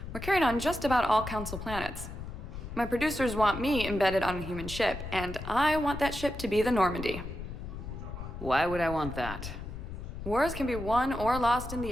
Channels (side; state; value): left; noise; rumble, 9 dB below the sound